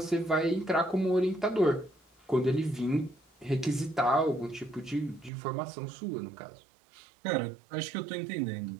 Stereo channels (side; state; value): left; drops out; at 5.3 s